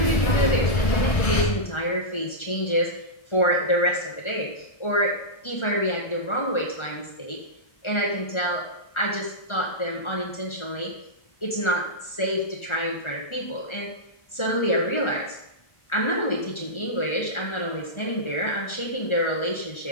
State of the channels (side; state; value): right; late; 1.4 ms